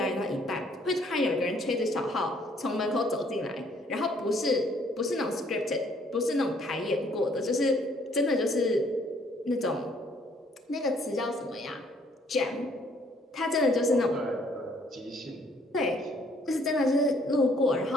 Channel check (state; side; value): normal; both; correlation 0.64